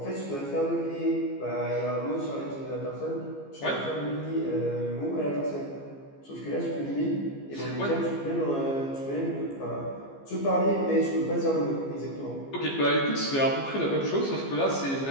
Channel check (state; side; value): late; right; 15 ms